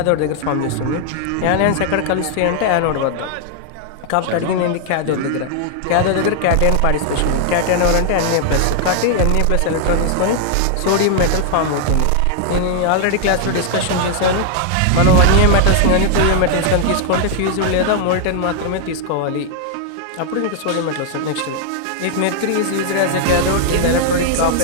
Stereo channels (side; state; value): both; different; correlation 0.00